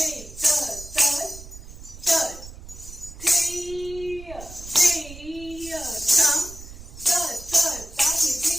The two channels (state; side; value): noise; right; rumble, 15 dB below the sound